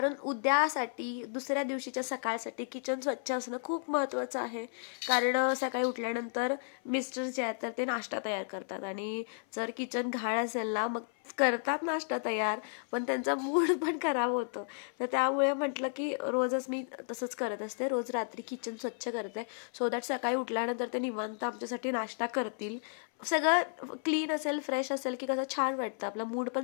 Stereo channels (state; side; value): silent; right; 56 dB below the other